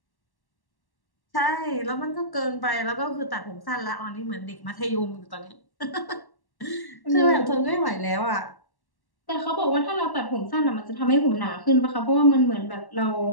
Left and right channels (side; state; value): right; late; 1.1 ms